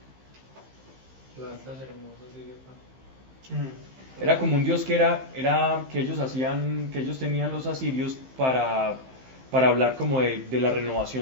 Era como un dios que que ellos tenían los asirios para hablar como de la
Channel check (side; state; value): left; late; 15 ms